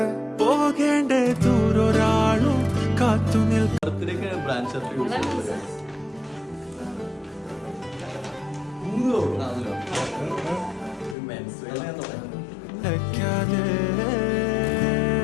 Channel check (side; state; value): right; drops out; at 11.2 s